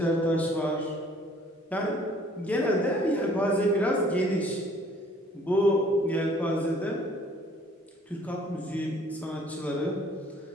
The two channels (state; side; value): normal; both; correlation 0.57